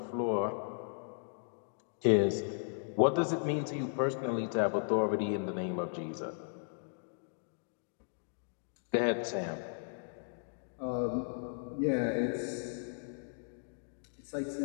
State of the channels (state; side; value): silent; right; digital silence